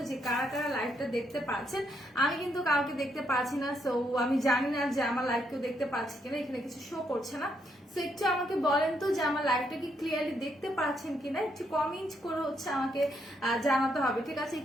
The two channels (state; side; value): normal; both; correlation 0.76